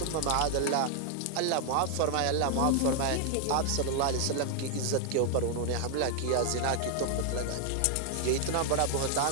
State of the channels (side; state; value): both; different; correlation 0.00